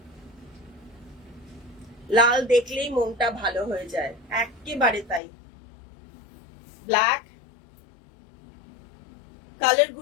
লাল দেখলেই মনটা ভালো হয়ে যায়, একেবারে তাই। ব্ল্যাক, কালার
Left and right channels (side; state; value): right; drops out; at 5.2 s